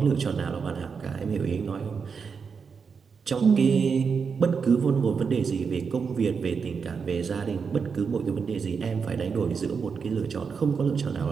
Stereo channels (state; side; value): quieter; left; 5.8 dB